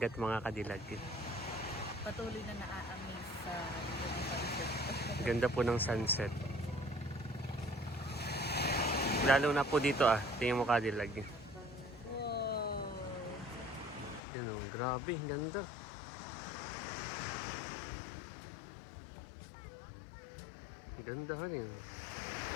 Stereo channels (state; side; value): drops out; right; at 14.2 s